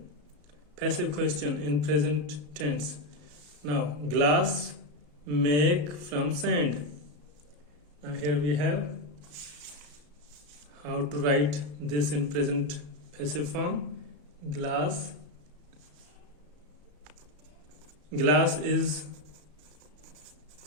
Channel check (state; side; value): late; left; 33 ms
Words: Passive question in present tense. Now, glass make from sand. Now here we have how to write this in present passive form. Glass is